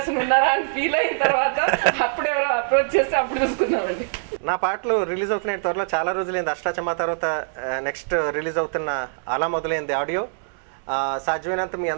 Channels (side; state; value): left; silent; digital silence